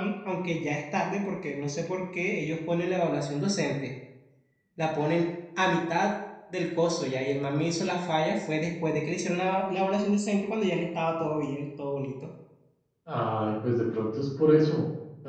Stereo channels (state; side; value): identical; both; correlation 1.00